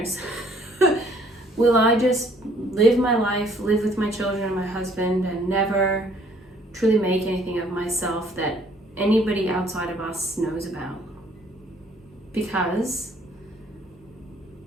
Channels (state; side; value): normal; both; correlation 0.61